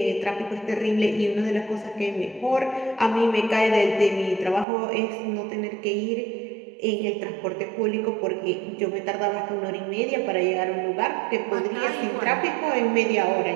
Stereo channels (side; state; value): left; drops out; at 4.7 s